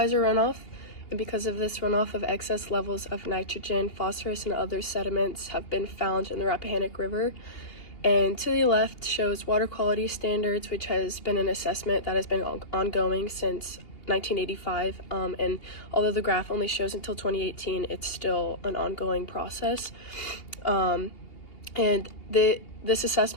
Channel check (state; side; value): late; right; 2.8 ms